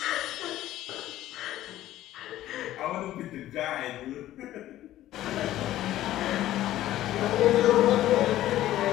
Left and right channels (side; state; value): right; quieter; 13.9 dB